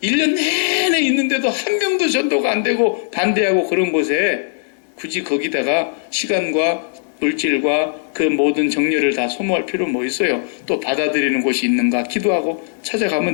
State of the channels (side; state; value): right; silent; digital silence